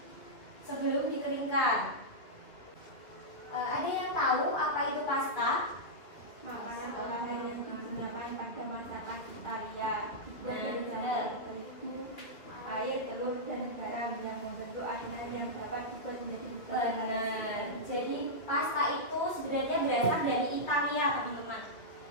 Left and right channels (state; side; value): late; right; 2.2 ms